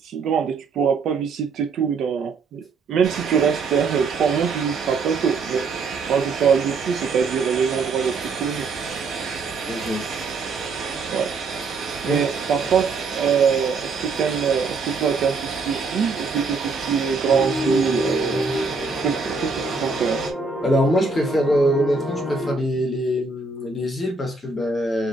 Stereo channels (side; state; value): left; quieter; 4.2 dB